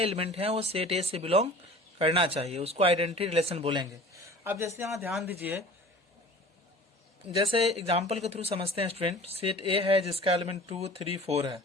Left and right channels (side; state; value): both; normal; correlation 0.43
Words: हैं वो सेट ए से बिलोंग करना चाहिए, उसको आइडेंटिटी रिलेशन बोलेंगे। अब जैसे यहाँ ध्यान दीजिए, जैसे एग्जाम्पल के थ्रू समझते हैं स्टूडेंट। सेट ए है जिसका एलिमेंट 2, 3, 4 है,